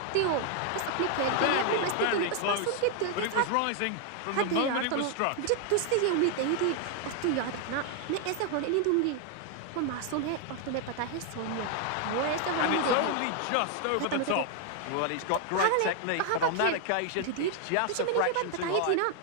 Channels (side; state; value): both; different; correlation 0.00